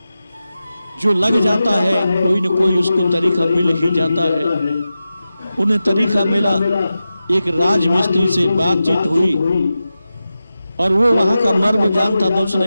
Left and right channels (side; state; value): both; inverted; correlation -0.93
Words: जो लग जाता है कोई न कोई उसको तरीका मिल ही जाता है। उन्हें तरीका मिला, एक राजमिस्त्री से बातचीत हुई और वो वहां का मर्म जानता था।